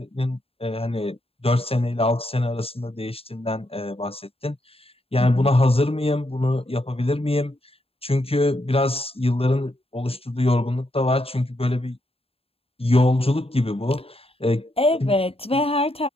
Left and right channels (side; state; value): right; late; 0.28 ms